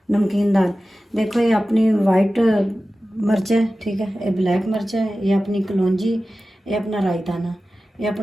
नमकीन दाल देखो, ये अपनी वाइट मिर्च है, ठीक है, ये ब्लैक मिर्च है, ये अपनी कलौंजी, ये अपना रायताना, ये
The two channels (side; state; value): both; normal; correlation 0.95